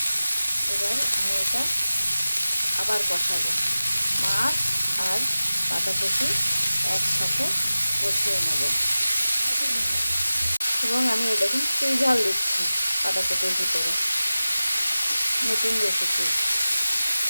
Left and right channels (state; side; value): inverted; both; correlation -0.96